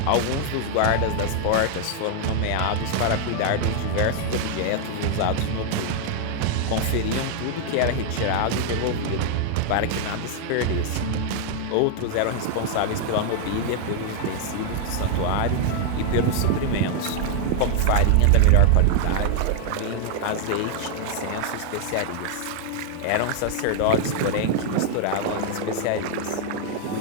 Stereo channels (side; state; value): both; different; correlation 0.00